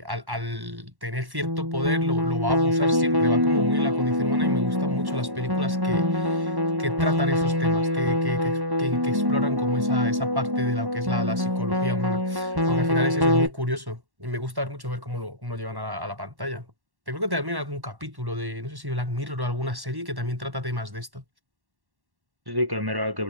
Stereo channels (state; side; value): late; left; 1.1 ms